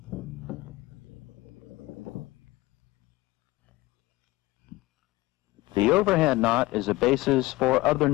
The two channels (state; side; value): quieter; right; 19.9 dB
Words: The overhand knot is a basis for other